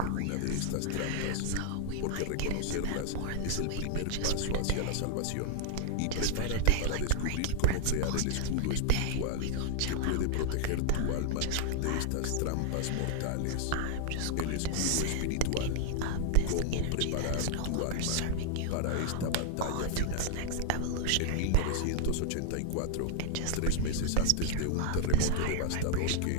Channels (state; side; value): different; both; correlation 0.00